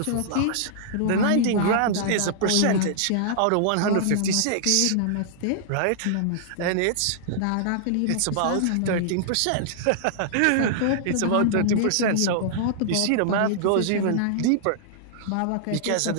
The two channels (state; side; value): different; both; correlation -0.01